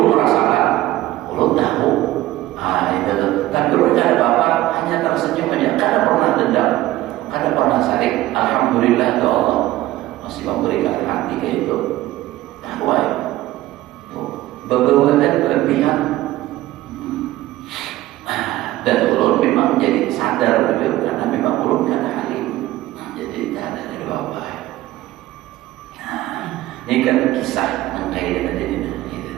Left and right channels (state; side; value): quieter; left; 16.1 dB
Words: merasakan, ulun tahu. Itu. Tapi ulun kada apa, hanya tersenyum aja. Kada pernah dendam, kada pernah sarik. Alhamdulillah ya Allah masih memberikan hati kayak itu. Tahu ya, beberapa berlebihan. Dan ulun memang jadi sadar betul, karena memang ulun kada halim. Jadi tak ada dari bapak. Nah, ini kan kisah yang kayak ini.